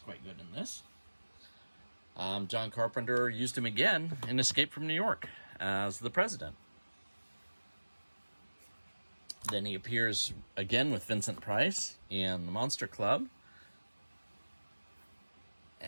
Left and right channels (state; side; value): inverted; both; correlation -1.00